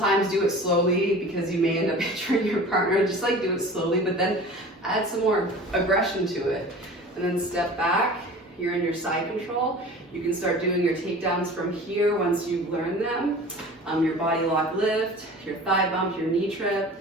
do it slowly because you may end up injuring your partner. Just do it slowly, but then add some more aggression to it. And then step back. You're in your side control. You can start doing your takedowns from here once you've learned them. Your body lock lift, your thigh bump, your knee trip.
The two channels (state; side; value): normal; both; correlation 0.40